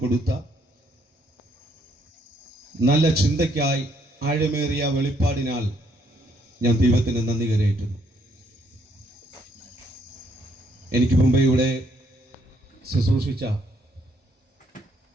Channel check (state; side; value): normal; both; correlation 0.70